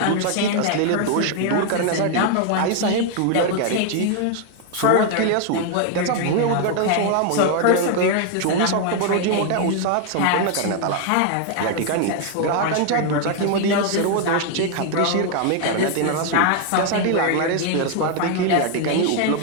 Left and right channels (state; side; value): different; both; correlation 0.00